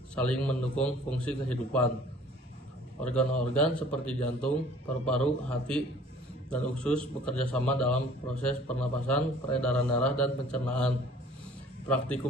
saling mendukung fungsi kehidupan. Organ-organ seperti jantung, paru-paru, hati, dan usus bekerja sama dalam proses pernapasan, peredaran darah, dan pencernaan.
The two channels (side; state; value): both; normal; correlation 0.52